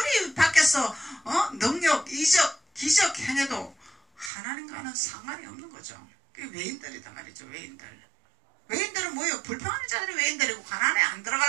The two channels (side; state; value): left; drops out; at 4.3 s